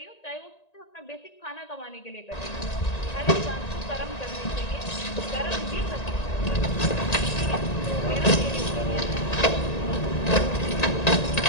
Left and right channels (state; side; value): late; right; 1.9 ms